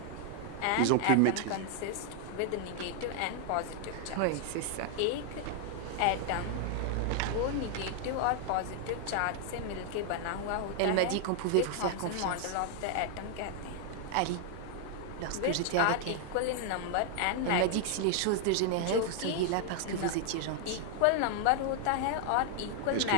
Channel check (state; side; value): different; both; correlation 0.00